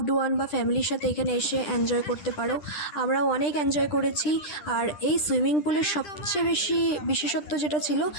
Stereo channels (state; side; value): late; right; 10 ms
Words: ওয়ান বা ফ্যামিলির সাথে এখানে এসে এনজয় করতে পারো। আমরাও অনেক এনজয় করেছি। আর এই সুইমিং পুলের সবচেয়ে বেশি বিশেষত্ব যেটা ছিল,